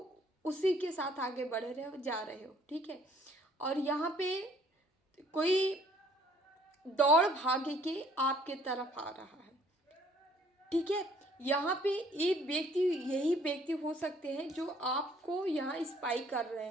उसी के साथ आगे बढ़ रहे हो, जा रहे हो, ठीक है। और यहाँ पे कोई दौड़ भागे के आपके तरफ आ रहा है, ठीक है। यहाँ पे एक व्यक्ति, यही व्यक्ति हो सकते हैं जो आपको यहाँ स्पाई कर रहे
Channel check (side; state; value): both; normal; correlation 0.61